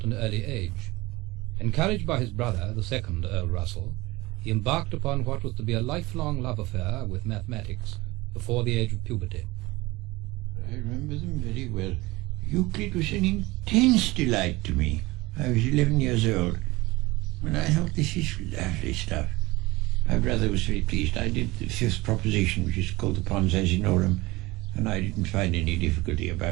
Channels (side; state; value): left; quieter; 20.9 dB